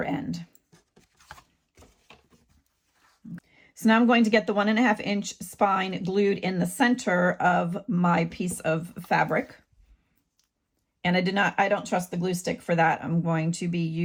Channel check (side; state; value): both; identical; correlation 1.00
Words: end. So now I'm going to get the 1.5 inch spine glued in the center of my piece of fabric. And I don't trust the glue stick for that. I'm going to be